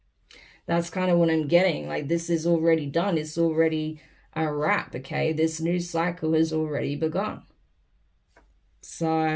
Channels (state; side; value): identical; both; correlation 1.00